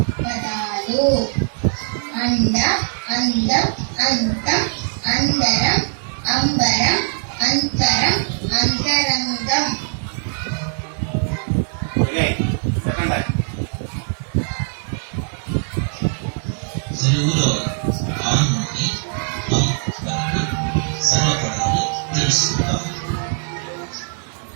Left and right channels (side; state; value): left; silent; 61 dB below the other